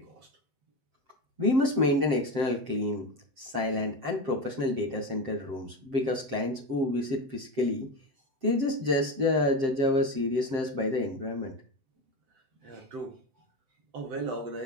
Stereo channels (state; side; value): late; left; 7.6 ms